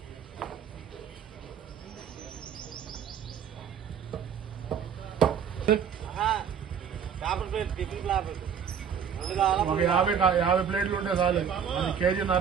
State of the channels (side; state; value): left; quieter; 7.6 dB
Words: ఒక 50 ప్లేట్లు ఉంటే చాలు. అది